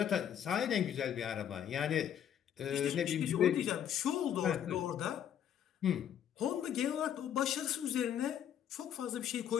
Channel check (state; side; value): quieter; right; 9.5 dB